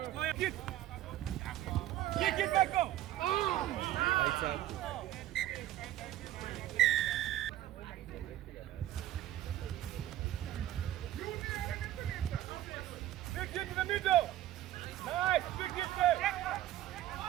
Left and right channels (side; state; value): left; quieter; 13.6 dB